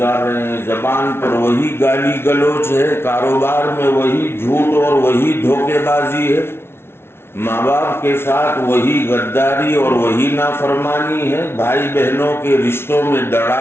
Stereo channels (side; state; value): right; late; 0.12 ms